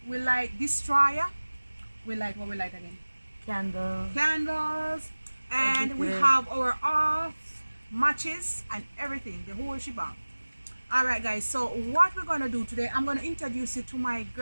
we like destroyer. We like what we like again? Candles. And we have our off matches and everything, the whole shebang. All right guys, so what we're gonna do today, I'm gonna introduce you to my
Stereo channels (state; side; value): inverted; both; correlation -1.00